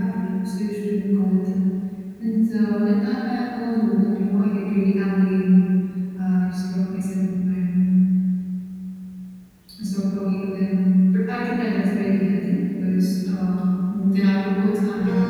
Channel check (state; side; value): identical; both; correlation 1.00